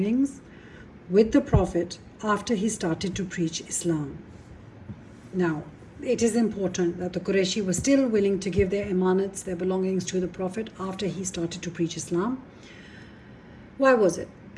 with the Prophet after he started to preach Islam. Now, it is important that the Qurayshi was still willing to give their imanats, their belongings to the Prophet after he started to preach Islam. Why was it?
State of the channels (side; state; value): both; identical; correlation 1.00